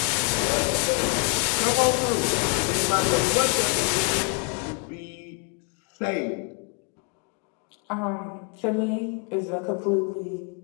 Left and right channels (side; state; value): right; quieter; 36.7 dB